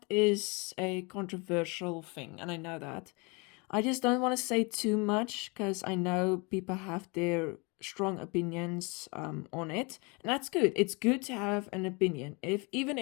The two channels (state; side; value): quieter; right; 29.4 dB